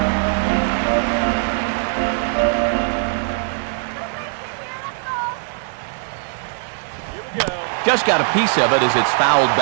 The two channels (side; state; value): left; silent; digital silence